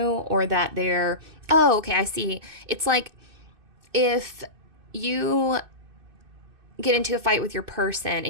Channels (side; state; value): left; late; 2.6 ms